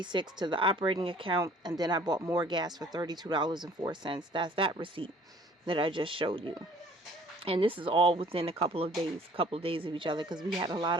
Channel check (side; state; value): both; normal; correlation 0.54